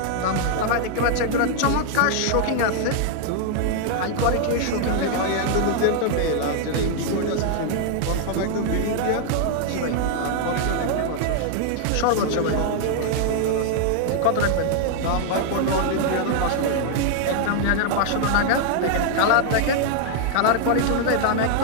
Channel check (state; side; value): different; both; correlation 0.00